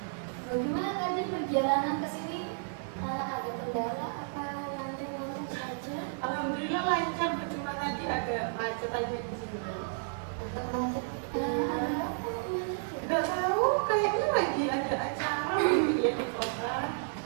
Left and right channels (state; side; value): silent; left; digital silence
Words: Bagaimana tadi perjalanan ke sini? Ada kendala apa lancar-lancar saja? Alhamdulillah lancar, Bu. Cuma tadi ada macet aja di sini. Agak macet. Nggak tahu, kayaknya lagi ada acara gitu ya di kota.